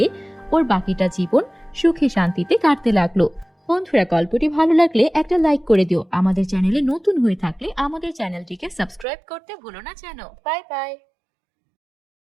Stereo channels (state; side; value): drops out; left; at 9.1 s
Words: ওর বাকিটা জীবন সুখে শান্তিতে কাটতে লাগলো। বন্ধুরা, গল্পটি ভালো লাগলে একটা লাইক করে দিও। আমাদের চ্যানেলে নতুন হয়ে থাকলে আমাদের চ্যানেলটিকে সাবস্ক্রাইব করতে ভুলো না যেন। Bye bye.